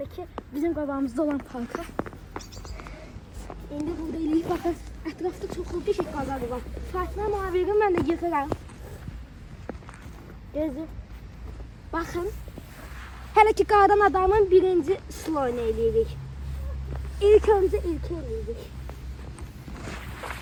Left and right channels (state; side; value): identical; both; correlation 1.00